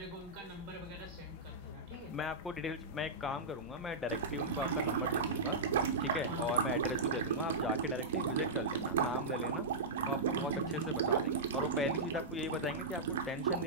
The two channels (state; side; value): quieter; left; 3.1 dB